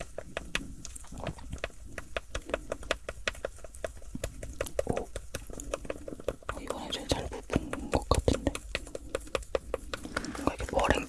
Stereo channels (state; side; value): identical; both; correlation 1.00